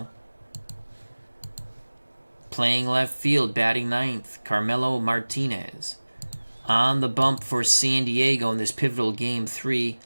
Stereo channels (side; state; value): both; inverted; correlation -1.00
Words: Playing left field, batting ninth, Carmelo Martinez. On the bump for San Diego in this pivotal Game 3,